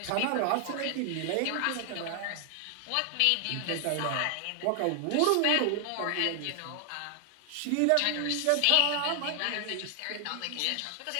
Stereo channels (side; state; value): both; different; correlation 0.00